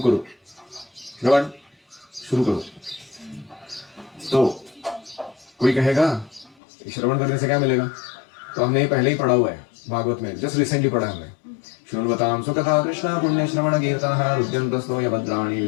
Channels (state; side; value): drops out; right; at 6.6 s